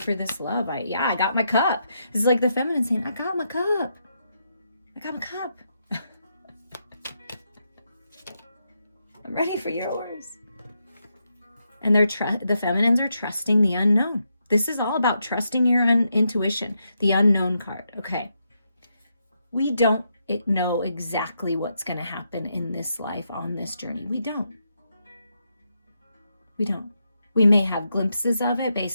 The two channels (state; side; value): inverted; both; correlation -0.82